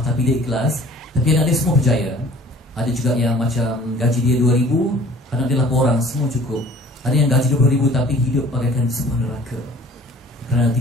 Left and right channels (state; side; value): normal; both; correlation 0.50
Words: dia ikhlas, tapi anak dia semua berjaya. Ada juga yang macam gaji dia 2,000, anak dia 8 orang, semua cukup. Ada yang gaji 20,000 tapi hidup bagaikan sebuah neraka kerana